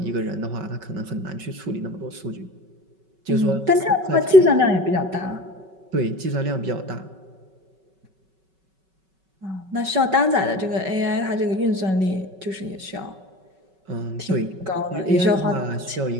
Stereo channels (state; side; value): late; left; 5.3 ms